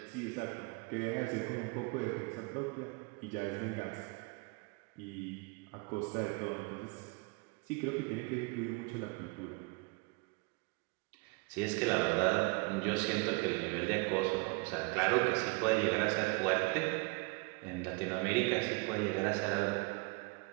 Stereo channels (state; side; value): quieter; left; 29.7 dB